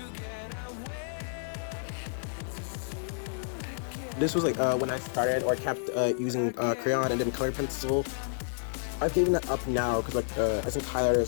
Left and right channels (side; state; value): right; silent; digital silence